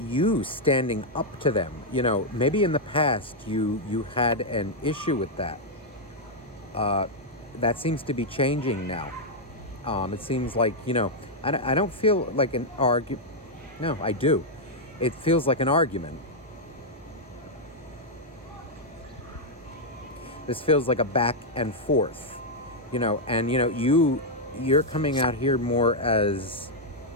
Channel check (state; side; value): normal; both; correlation -0.03